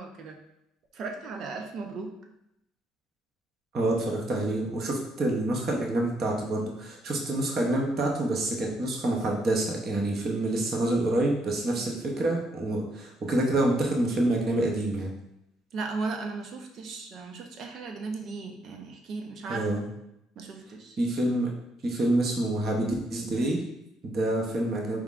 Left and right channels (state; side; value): normal; both; correlation 0.75